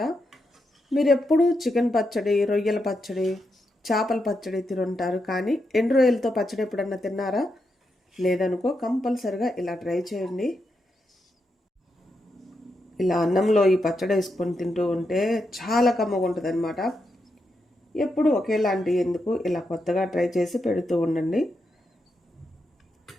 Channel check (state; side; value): normal; both; correlation 0.84